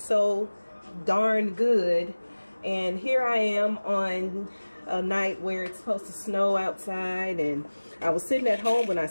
darn good. And here I am on a night where it's supposed to snow outside, and I was sitting at home when I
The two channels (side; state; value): both; inverted; correlation -1.00